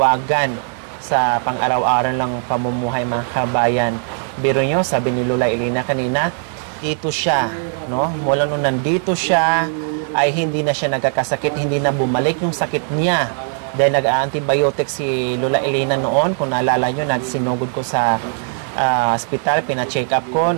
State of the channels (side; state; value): left; silent; 62 dB below the other